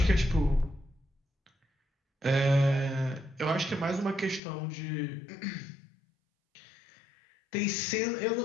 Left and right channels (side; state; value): right; drops out; at 4.4 s